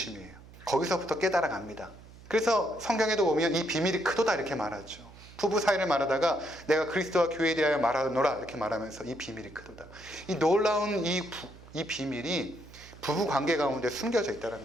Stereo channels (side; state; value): right; noise; hum, 20 dB below the sound